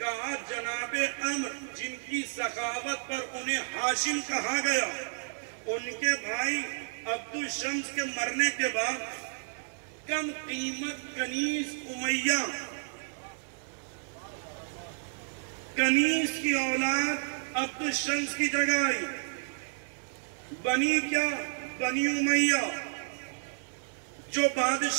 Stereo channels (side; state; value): left; silent; 57 dB below the other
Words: جناب عمر جن کی سخاوت پر انہیں ہاشم کہا گیا، ان کے بھائی عبد الشمس کے مرنے کے بعد کم قیمت کنیز امیہ، کنیز کی اولاد عبد الشمس کی جگہ آئی. بنی کیا؟ بنی امیہ. جو